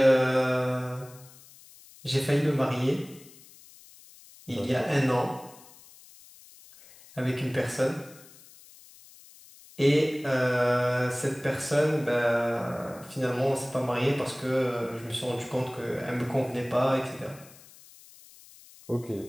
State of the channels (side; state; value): left; noise; hiss, 22 dB below the sound